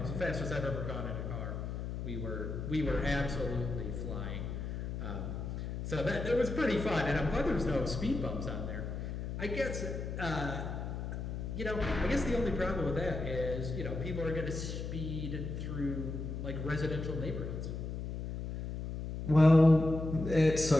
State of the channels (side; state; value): left; noise; hum, 5 dB below the sound